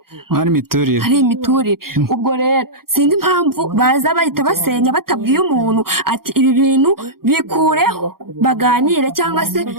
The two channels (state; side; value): late; left; 0.93 ms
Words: ari imiturire ubwo rero sinzi impamvu baza bahita basenya batabwiye umuntu ati ibi bintu bikureho baganire cyangwa se